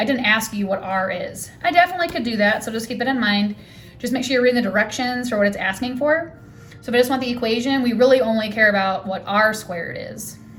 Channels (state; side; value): identical; both; correlation 1.00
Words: didn't ask you what r is. I definitely could do that, so just keep that in mind. Just make sure you're reading the directions for what it's asking for. So if I just want the equation, we really only care about what r squared is.